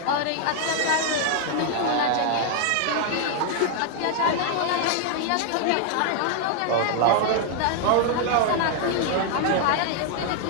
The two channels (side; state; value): both; different; correlation 0.00